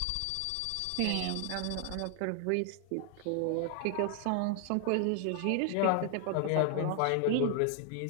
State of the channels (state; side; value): different; both; correlation 0.00